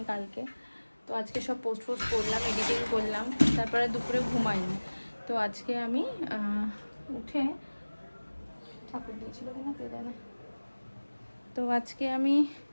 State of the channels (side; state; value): both; inverted; correlation -1.00